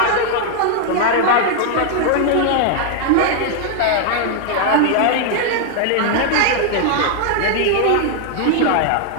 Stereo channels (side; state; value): both; different; correlation 0.00